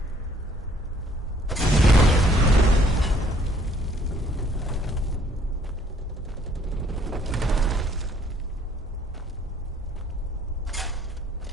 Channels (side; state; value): both; normal; correlation 0.62